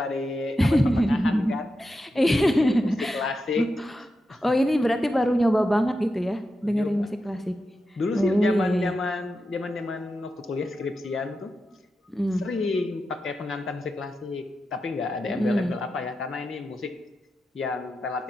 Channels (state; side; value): normal; both; correlation 0.89